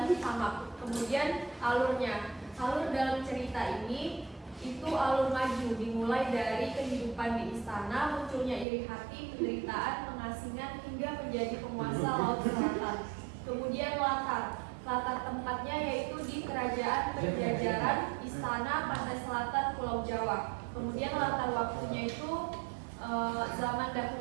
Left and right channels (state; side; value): drops out; left; at 8.7 s